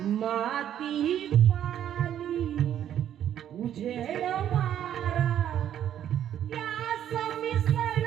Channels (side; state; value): left; quieter; 10.5 dB